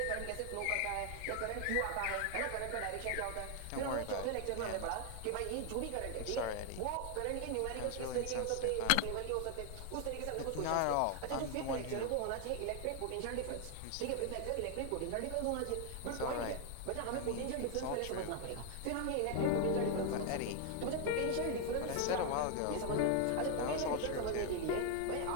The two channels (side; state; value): both; different; correlation 0.00